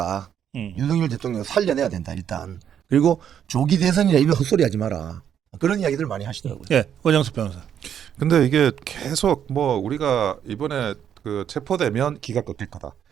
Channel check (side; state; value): left; quieter; 9.0 dB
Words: 윤석열 대통령을 살려내야 된다 일단. 그리고 조기 대선이라 이런 헛소리 하지 마라. 그런 이야기들 많이 하시더라고요. 예, 원영수 변호사. 근데 이게 계속 뭐 우리가 이번에 그 체포되면 기가 꺾일 거다,